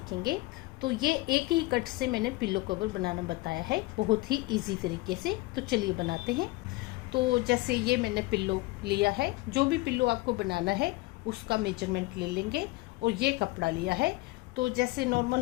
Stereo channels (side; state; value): right; quieter; 21.1 dB